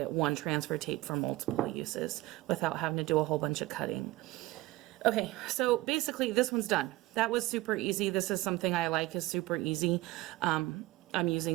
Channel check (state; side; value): quieter; left; 18.9 dB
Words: one transfer tape for multiple uses without having to do a whole bunch of cutting. Okay, so basically this one's done. That was super easy. This is something I like, is super easy. I'm